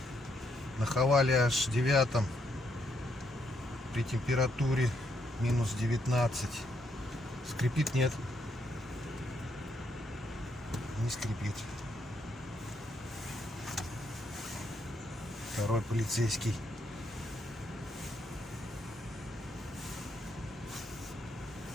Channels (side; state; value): both; normal; correlation 0.76